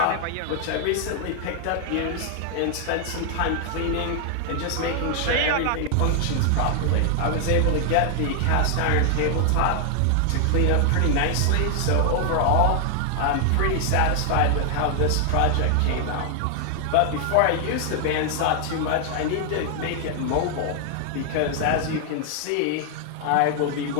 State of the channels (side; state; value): both; different; correlation 0.00